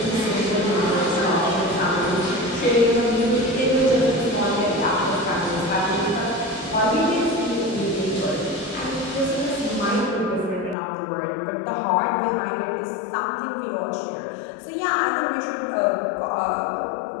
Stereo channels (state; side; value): drops out; right; at 10.8 s